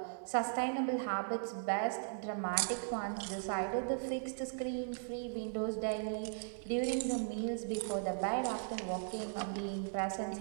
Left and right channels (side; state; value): left; silent; digital silence